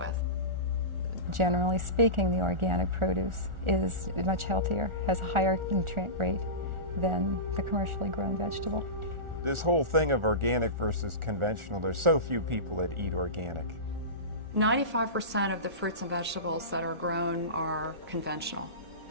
Generally speaking, the organic produce is much healthier, has a higher nutrient rate than the commercially grown vegetable. This whole thing of organic versus conventional, there's so few people that eat organic. 95% of the fruits and vegetables that are grown are conventional,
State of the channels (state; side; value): late; left; 1.4 ms